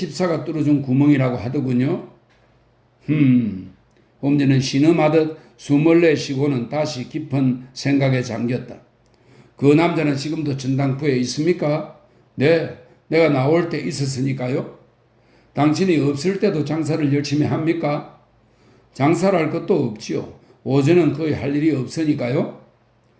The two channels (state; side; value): identical; both; correlation 1.00